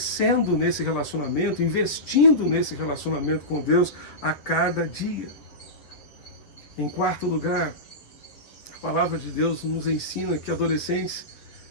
nesse relacionamento, investindo nesse relacionamento com Deus a cada dia. Em quarto lugar, a palavra de Deus nos ensina que adolescentes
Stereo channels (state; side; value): late; right; 8.5 ms